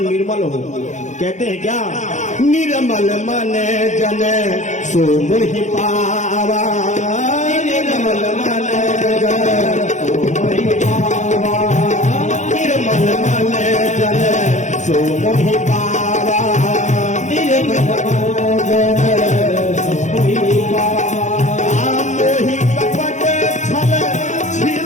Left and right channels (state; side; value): late; right; 0.35 ms